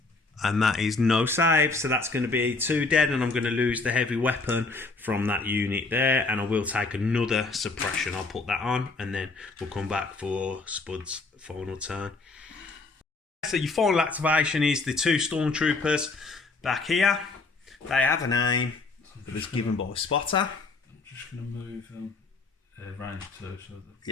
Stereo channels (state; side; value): quieter; right; 3.8 dB